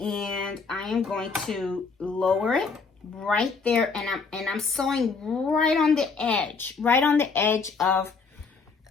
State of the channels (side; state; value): right; quieter; 4.8 dB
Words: I am going to lower it right there, and I'm sewing right on the edge of